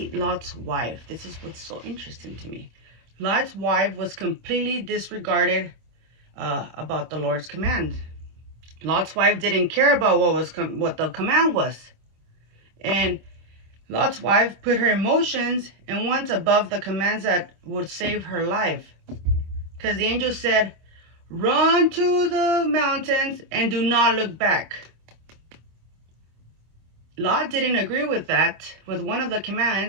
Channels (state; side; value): late; left; 25 ms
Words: Lot's wife. This is what's so interesting to me. Lot's wife was completely disregarded about the Lord's command. Lot's wife didn't care about what the command was. And Lot's wife put her emotions and went above the commands that would save her life. Because the angel said, run to the mountains and do not look back. Lot didn't agree with that, with one of the